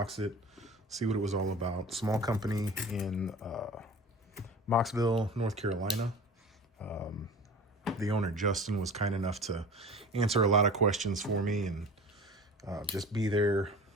it, see what it was all about. Small company in Mocksville, North Carolina. The owner, Justin, was kind enough to answer a lot of questions for me and just be there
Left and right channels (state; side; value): normal; both; correlation 0.38